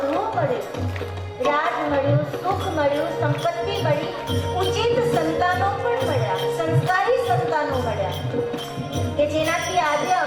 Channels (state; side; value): identical; both; correlation 1.00